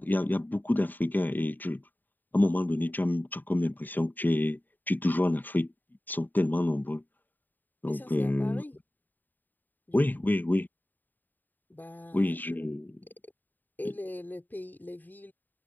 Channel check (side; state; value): right; late; 0.088 ms